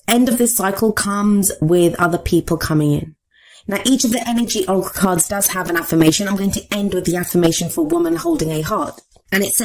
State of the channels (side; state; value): both; identical; correlation 1.00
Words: end of this cycle comes with other people coming in. Now, each of the energy oracle cards does have an affirmation. I'm going to end with the affirmation for woman holding a heart. And it